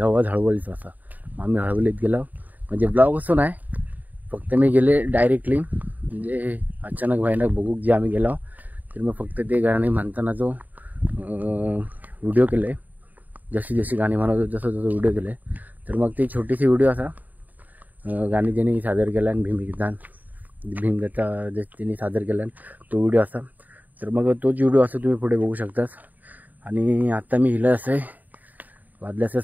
आवाज हळवलीच असा. आम्ही हळवलीत गेलो. म्हणजे ब्लॉग असं नाही, फक्त मी गेले डायरेक्टली, म्हणजे अचानक भयानक बघूक जे आम्ही गेलो. तर मग फक्त ते गाणी म्हणताना जो व्हिडिओ केले, जशी गाणी म्हणत जसं व्हिडिओ केले. तर मग ती छोटीशी व्हिडिओ असा गाणी त्यांनी सादर केला आणि भीमगीता जे त्यांनी सादर केला तो व्हिडिओ असा. तर मग तोच व्हिडिओ असं तुम्ही पुढे बघू शकताच. आणि आता मी हिला असं वाजले असं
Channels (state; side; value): late; left; 0.082 ms